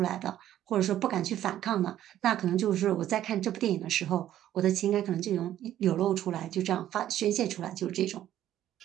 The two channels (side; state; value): left; quieter; 12.1 dB